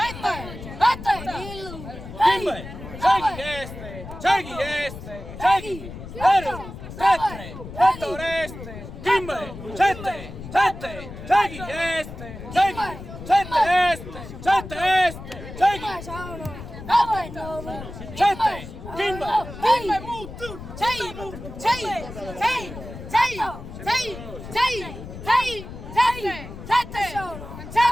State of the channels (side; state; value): left; noise; rumble, 12 dB below the sound